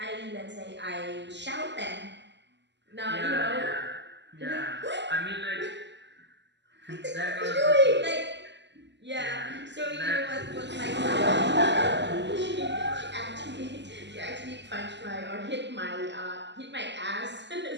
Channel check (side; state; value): left; late; 0.51 ms